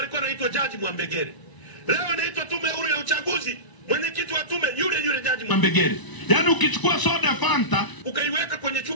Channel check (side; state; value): right; late; 1.0 ms